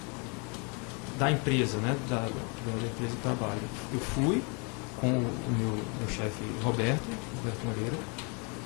da empresa, né, da empresa que trabalho. Eu fui com o meu chefe Roberto Moreira,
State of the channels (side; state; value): right; quieter; 34.3 dB